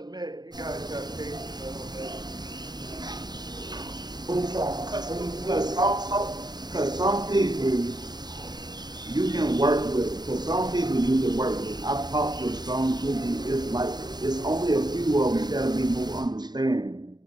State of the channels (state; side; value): late; left; 0.20 ms